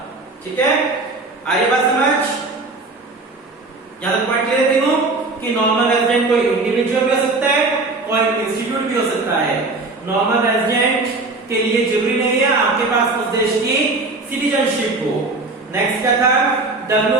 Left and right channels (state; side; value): quieter; left; 3.4 dB